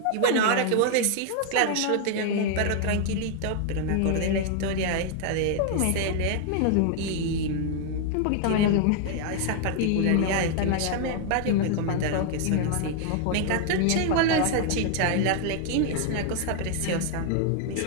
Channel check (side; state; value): both; different; correlation 0.00